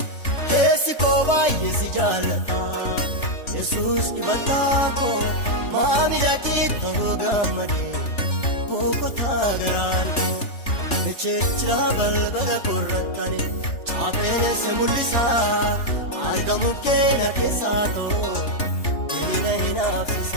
keessi koo baay'ee si jaallata Yesuus dibataa koo maamila keetuu gammadee boqotaa garaan koo Echechira balbala korratani chaapheessa mul'isaa argamu keenya keessaa ta'u diina hin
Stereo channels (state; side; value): late; right; 3.4 ms